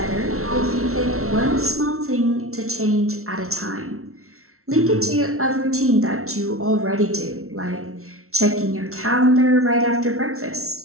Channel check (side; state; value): left; late; 0.63 ms